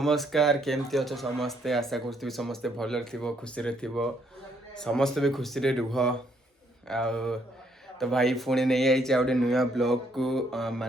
केमती अच्छे समस्ते आशा करूँ समस्ते भल खुशी समस्ते भी खुशी रुह आ तो भाई पुणी नहीं आई गोटे नुआ ब्लॉग को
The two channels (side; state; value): both; normal; correlation 0.70